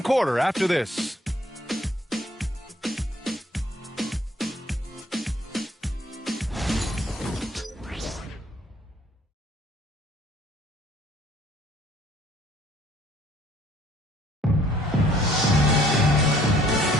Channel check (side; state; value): both; normal; correlation 0.60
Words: quarter after this.